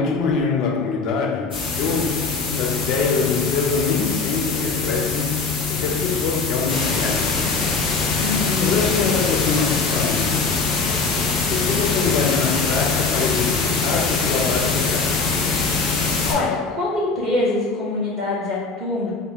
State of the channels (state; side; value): quieter; right; 4.2 dB